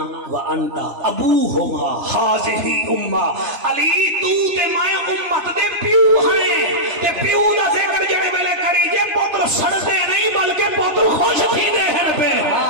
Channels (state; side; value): late; left; 3.0 ms